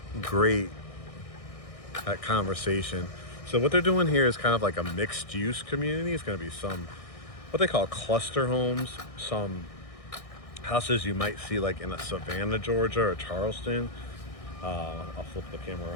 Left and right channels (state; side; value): late; right; 1.6 ms